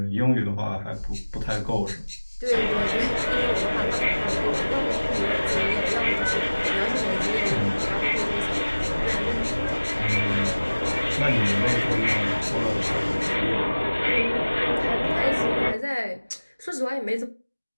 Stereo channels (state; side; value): inverted; both; correlation -1.00